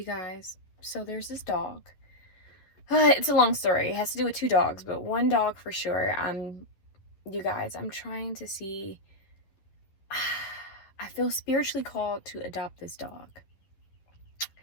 guys, so there's this dog. It's a long story. It has to do with two dogs, but one dog for sure. You guys, I'm trying to see. I feel spiritually called to adopt this dog.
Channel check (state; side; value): late; right; 11 ms